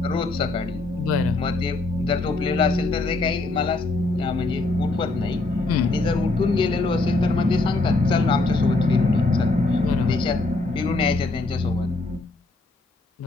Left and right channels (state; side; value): quieter; right; 3.2 dB